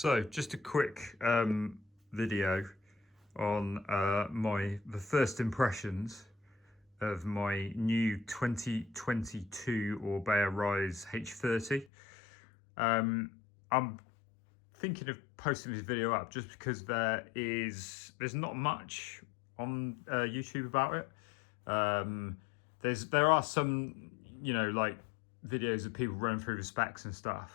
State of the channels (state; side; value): drops out; right; at 11.9 s